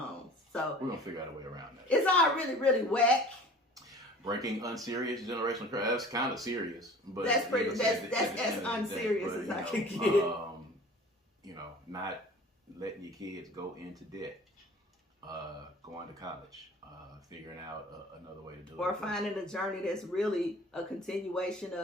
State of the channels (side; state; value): both; normal; correlation 0.44